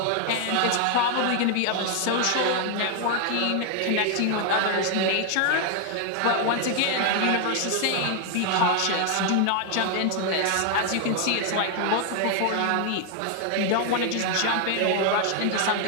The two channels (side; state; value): both; different; correlation 0.00